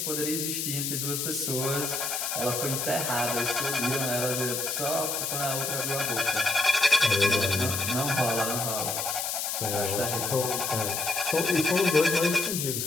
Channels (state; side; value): noise; left; hiss, 2 dB below the sound